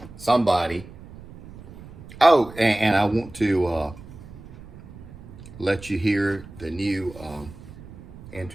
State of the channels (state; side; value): noise; right; rumble, 17 dB below the sound